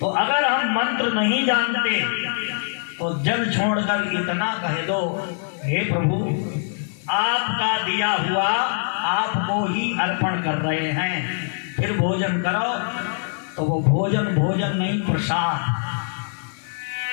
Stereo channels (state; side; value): silent; right; digital silence